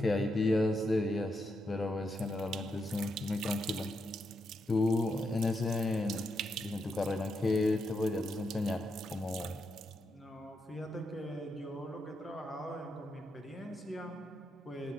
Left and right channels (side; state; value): both; normal; correlation 0.82